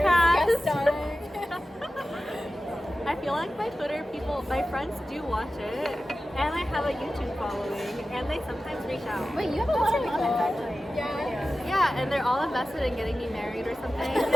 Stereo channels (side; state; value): both; normal; correlation 0.94